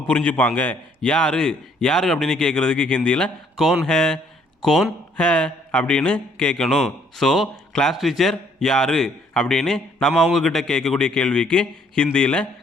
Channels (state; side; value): normal; both; correlation 0.65